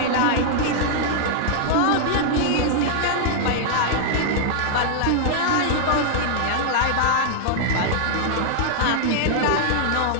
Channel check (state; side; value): different; both; correlation -0.01